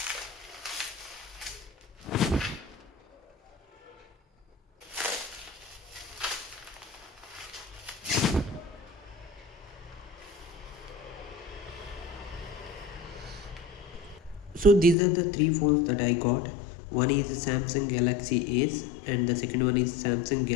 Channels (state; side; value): drops out; right; at 15.0 s